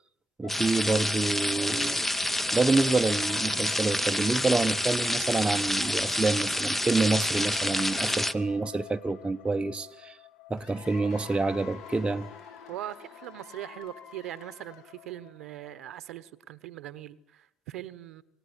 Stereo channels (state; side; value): normal; both; correlation 0.89